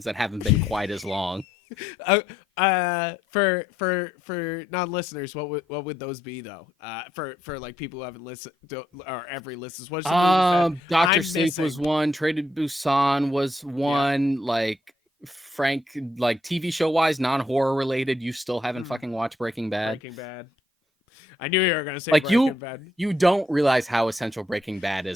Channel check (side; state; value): both; normal; correlation 0.75